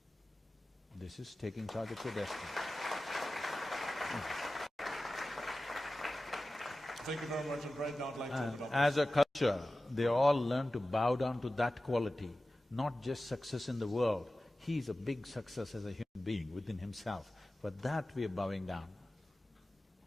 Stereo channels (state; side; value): normal; both; correlation 0.95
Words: This is taking charge of your destiny. Thank you very much, and right now I'd like to And as a culture, they all learn to bow down to that quality, not just success in the world. He is a big success as a human being within himself. For that we are bowing down.